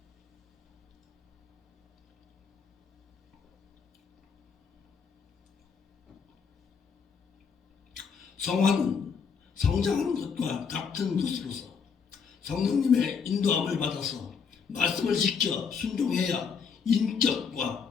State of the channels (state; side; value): quieter; right; 6.2 dB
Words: 성화는 성장하는 것과 같은 것으로서 성령님의 인도함을 받아서 말씀을 지켜 순종해야